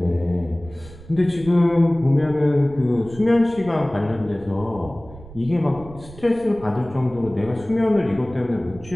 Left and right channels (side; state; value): right; noise; rumble, 18 dB below the sound